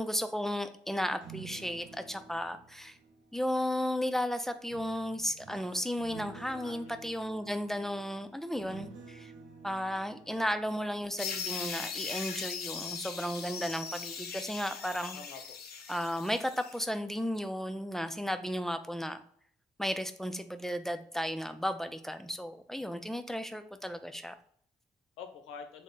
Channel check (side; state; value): both; normal; correlation 0.85